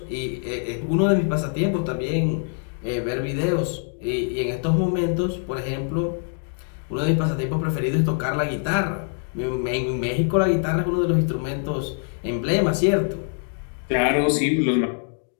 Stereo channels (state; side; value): silent; right; 57 dB below the other